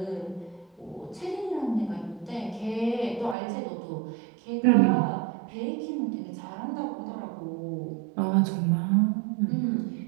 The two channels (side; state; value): left; drops out; at 3.4 s